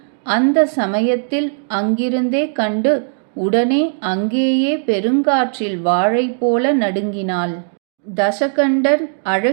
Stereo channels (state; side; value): silent; left; digital silence